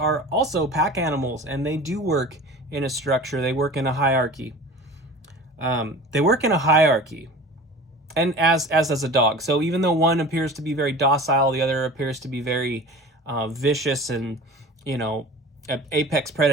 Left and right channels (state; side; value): normal; both; correlation 0.39